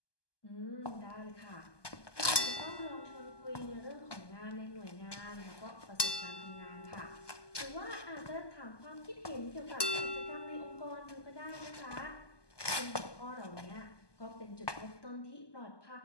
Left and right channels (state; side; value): late; right; 1.2 ms